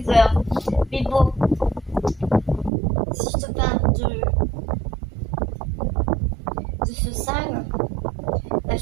heures. Mais bon, si je te parle de ce salon, bah,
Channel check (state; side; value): drops out; left; at 2.7 s